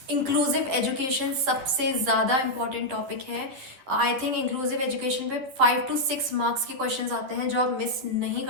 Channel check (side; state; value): left; late; 12 ms